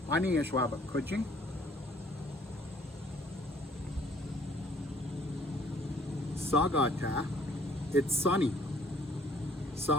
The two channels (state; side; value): normal; both; correlation 0.59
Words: Ani Ashwaba Kuching. Sagata, it's sunny.